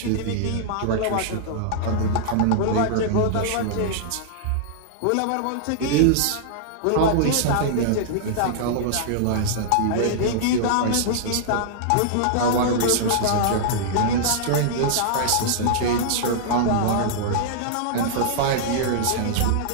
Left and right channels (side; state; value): both; different; correlation -0.02